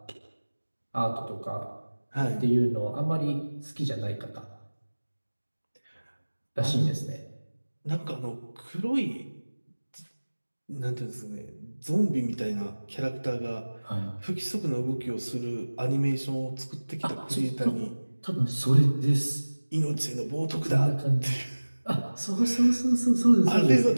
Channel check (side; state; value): both; inverted; correlation -1.00